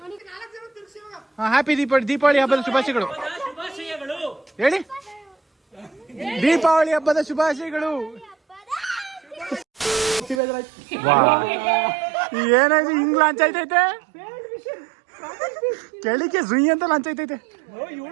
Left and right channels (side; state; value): left; drops out; at 10.4 s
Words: ಹ್ಯಾಪಿ ದೀಪಾವಳಿ ಹಬ್ಬದ ಶುಭಾಶಯಗಳು ಹೇಳಿ. ದೀಪಾವಳಿ ಹಬ್ಬದ ಶುಭಾಶಯಗಳು. ಏನಾಯ್ತು ಹಿಂಗ್ ಲಾಂಚ್ ಆಯ್ತೈತೆ. ಕೆಳಿಕೆ ಸುಯಿ ಅಂತ ಲಂಚ ಐತೈತೆ.